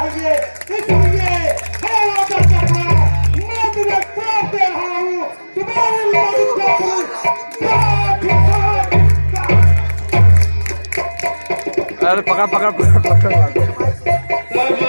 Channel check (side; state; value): both; inverted; correlation -1.00